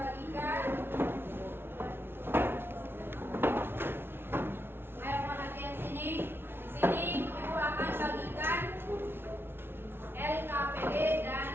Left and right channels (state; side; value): late; left; 0.11 ms